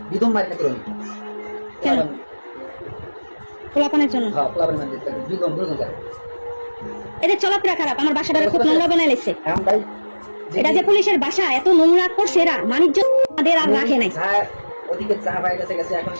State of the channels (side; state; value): both; inverted; correlation -1.00